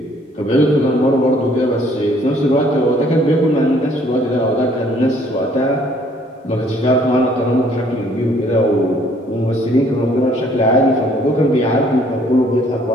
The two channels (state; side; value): normal; both; correlation 0.61